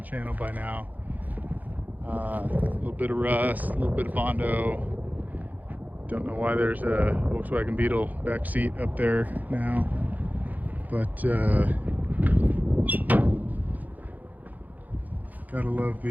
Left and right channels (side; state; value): left; late; 0.081 ms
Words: channel by now. A little bit of rust, a little bit of Bondo. Don't know why there's a Volkswagen Beetle back seat up there now, but gotta love